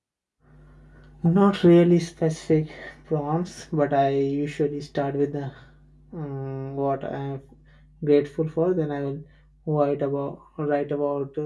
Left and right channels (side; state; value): both; identical; correlation 1.00